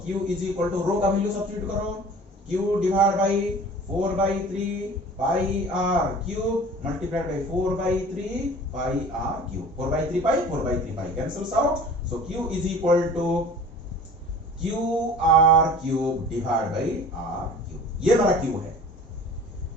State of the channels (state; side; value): normal; both; correlation 0.43